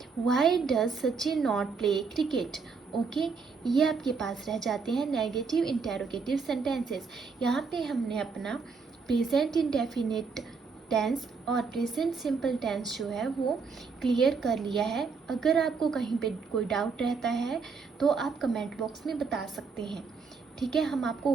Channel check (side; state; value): left; quieter; 5.1 dB